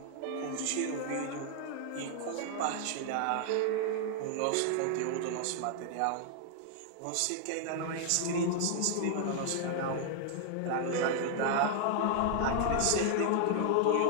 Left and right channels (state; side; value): different; both; correlation 0.00